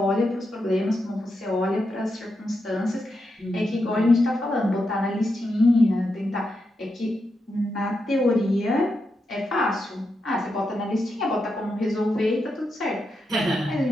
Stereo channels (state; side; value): normal; both; correlation 0.86